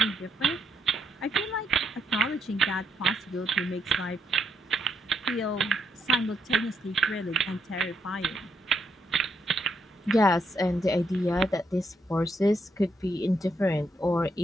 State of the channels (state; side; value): normal; both; correlation 0.77